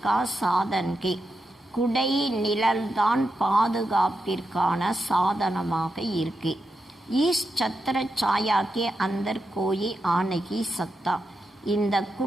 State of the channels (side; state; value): both; normal; correlation 0.87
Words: का साधन के, குடை நிழல்தான் பாதுகாப்பிற்கான சாதனமாக இருக்கு. इस छत्र छाया के अंदर कोई आ नहीं सकता. இந்த